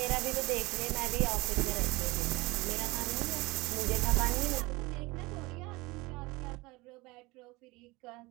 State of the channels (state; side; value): quieter; left; 22.8 dB